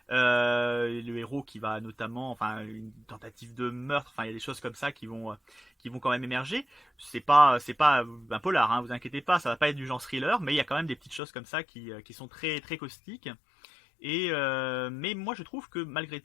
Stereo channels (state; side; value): drops out; right; at 11.2 s